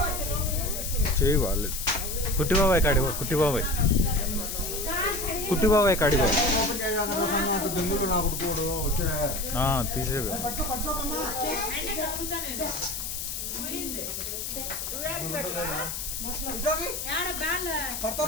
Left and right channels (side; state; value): left; noise; hiss, 5 dB below the sound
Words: చేయి వాళ్ళు కుట్టి బాబాయ్ కాడిగో, కుట్టి బాబాయ్ కాడిగో తీసేవి.